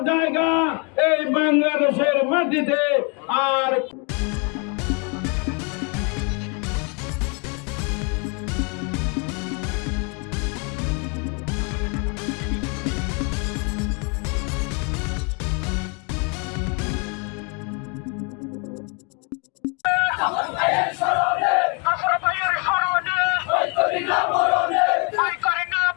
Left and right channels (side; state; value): right; quieter; 34.3 dB